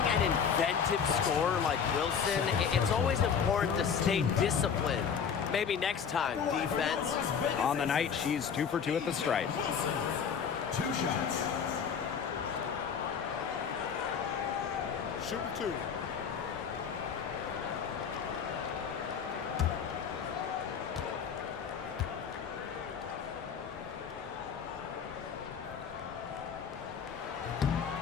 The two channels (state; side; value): quieter; right; 7.0 dB